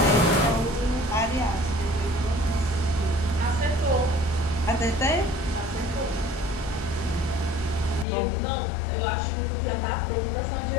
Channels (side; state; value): right; drops out; at 8.1 s